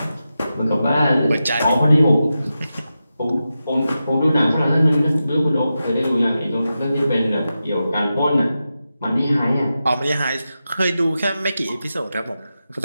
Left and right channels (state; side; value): inverted; both; correlation -0.91